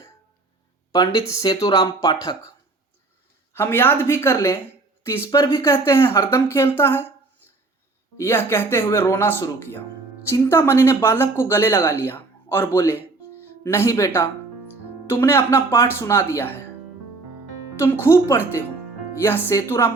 पंडित सेतुराम पाठक, हम याद भी कर लें तो इस पर भी कहते हैं हरदम खेलता है। यह कहते हुए रोना शुरू किया। चिंतामणि ने बालक को गले लगा लिया और बोले, नहीं बेटा, तुमने अपना पाठ सुना दिया है, तुम खूब पढ़ते हो। यह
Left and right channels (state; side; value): quieter; left; 3.5 dB